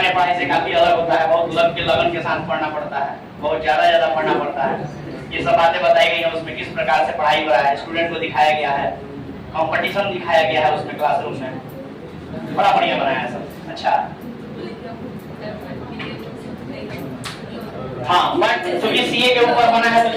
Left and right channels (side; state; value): both; identical; correlation 1.00